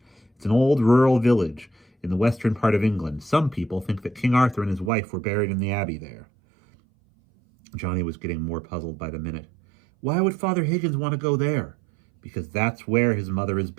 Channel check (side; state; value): left; drops out; at 4.9 s